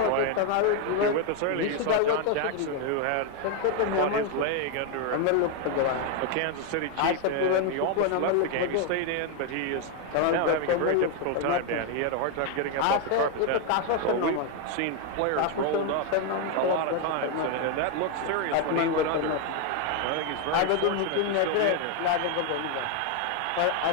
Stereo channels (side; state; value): both; different; correlation 0.01